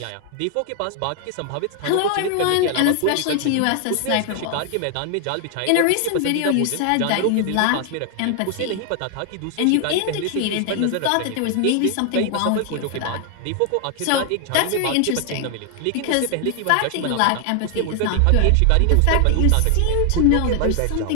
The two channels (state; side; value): different; both; correlation 0.00